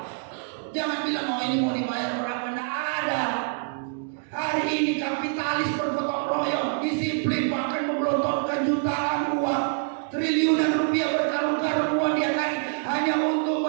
Jangan bilang ini mau dibayar berapa, tidak ada. Hari ini kapitalis bergotong royong, disiplin, bahkan menggelontorkan jutaan uang, triliunan rupiah, berkarung-karung uang dia hanya untuk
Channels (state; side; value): silent; left; 61 dB below the other